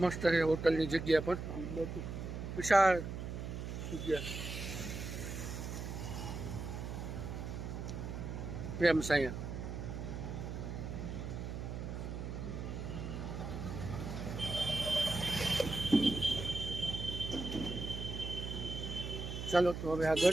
મસ્ત છે હોટલની જગ્યા પણ. બહુ વિશાળ જગ્યા. પ્રેમ સાયા. ચાલો તો હવે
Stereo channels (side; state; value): right; noise; hum, 5 dB below the sound